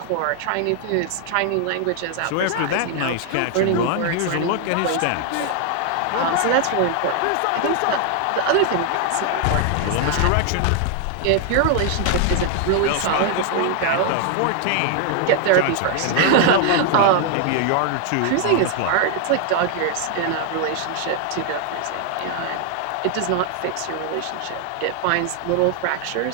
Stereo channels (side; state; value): both; different; correlation 0.00